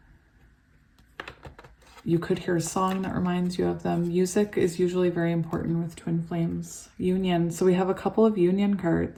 you could hear a song that reminds you of them. Music is usually very important with twin flames. Union. So we have a couple of union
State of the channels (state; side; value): identical; both; correlation 1.00